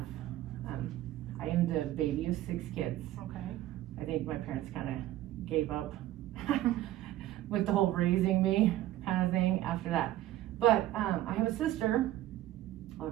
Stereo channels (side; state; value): left; quieter; 14.3 dB